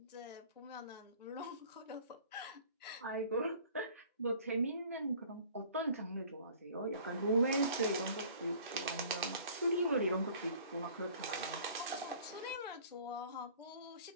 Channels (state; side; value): inverted; both; correlation -0.50